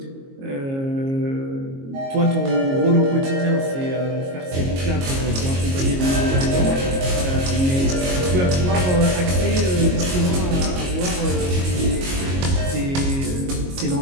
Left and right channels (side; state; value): left; late; 22 ms